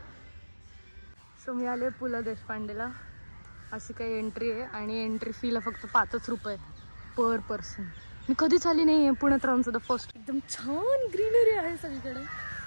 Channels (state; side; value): inverted; both; correlation -1.00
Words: सो मी आले पु ल देशपांडेला. अशी काही एंट्री आहे आणि एंट्री फीला फक्त 5 रुपये पर पर्सन. मी कधीच आली नाही आहे पुण्यात राहून सुद्धा फर्स्ट. एकदम छान ग्रीनरी आहे सगळीकडे.